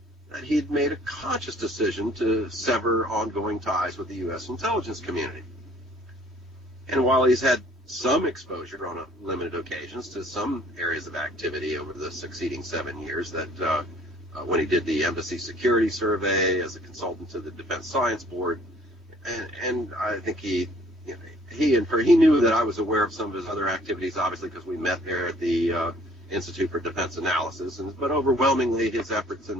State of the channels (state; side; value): normal; both; correlation 0.56